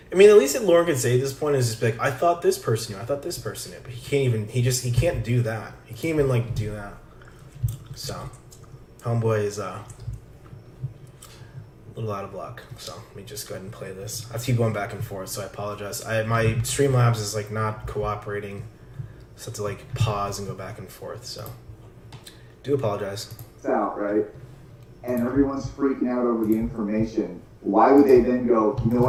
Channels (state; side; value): identical; both; correlation 1.00